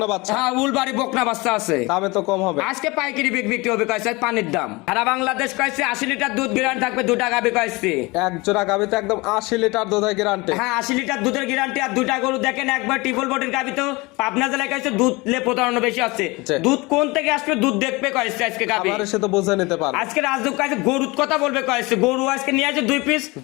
বাচ্চা। হ্যাঁ উলবাড়ি বকনা বাচ্চা আছে দামে তো কম হবে। আজকে পাইকারি বিক্রি হবে কয়েছে পানির দাম সারা বাংলাদেশ কয়েছে 80 লিটার দুধ গ্যারান্টি থাকবে দুটা গাবি কয়েছে এক জোড়া গাবিতে একদম 80 লিটার দুধের গ্যারান্টি। হ্যাঁ 80 লিটার দুধের গ্যারান্টি আর দুটা গরু দেখেন একবার ট্রিপল বডির গাবি তো পাবনা জেলায় কয়েছে দুধ লে প্রতারণা বেশি আছে দুধ কোন থেকে আসবে দুধ দেখবে কয়েছে আজকে গাবি আমার সে তো বুঝে নিতে পারবে। আজকে রাজদূত কাছে গরুর কথা বলবে কয়েছে গরু আজকে নিয়ে আসে 2 পিস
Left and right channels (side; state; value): right; quieter; 24.2 dB